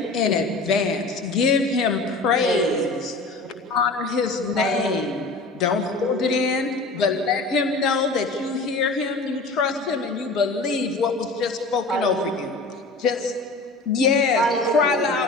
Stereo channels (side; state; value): right; quieter; 3.3 dB